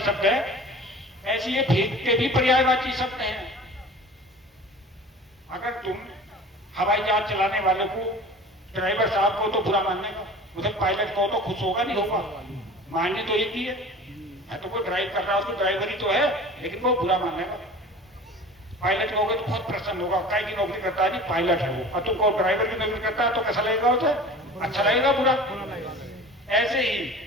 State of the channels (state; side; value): normal; both; correlation 0.40